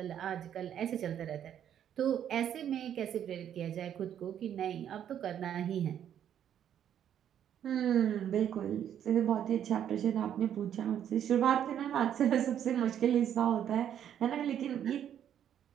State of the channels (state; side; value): quieter; left; 9.8 dB